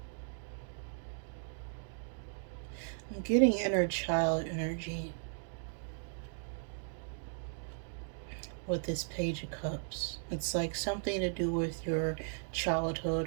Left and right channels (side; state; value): left; silent; digital silence